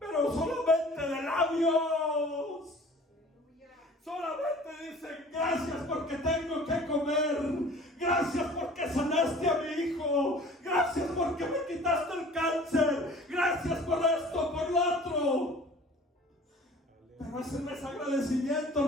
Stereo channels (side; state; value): both; normal; correlation 0.46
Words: solamente de labios. Solamente dicen gracias porque tengo que comer, gracias porque sanaste a mi hijo, gracias porque me quitaste el cáncer, gracias por esto, por lo otro. Pero ese no es agradecimiento,